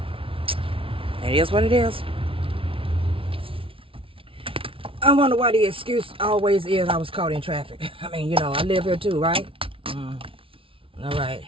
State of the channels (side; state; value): left; late; 0.26 ms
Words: It is what it is. I wonder why the excuse always is I was caught in traffic. I mean, I live here too, right? All right.